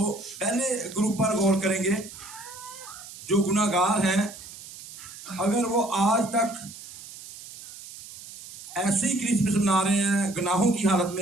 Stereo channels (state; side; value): noise; right; hiss, 15 dB below the sound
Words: पहले ग्रुप पर गौर करेंगे, जो गुनाहगार हैं। अगर वो आज तक ऐसे ही क्रिसमस मना रहे हैं गुनाहों की हालत